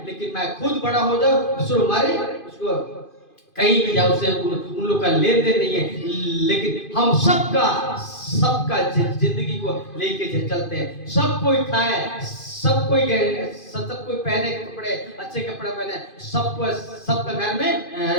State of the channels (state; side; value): late; right; 2.5 ms